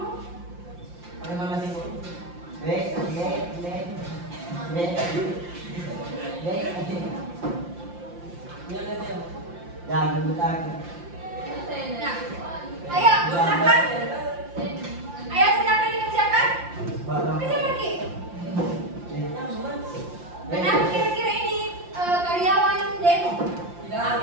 Jangan aku. Nah, ayo silakan. Ayo silakan dikerjakan. Kerjakan Ki. Kenapa kira-kira ini karyawan demo?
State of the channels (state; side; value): late; left; 5.7 ms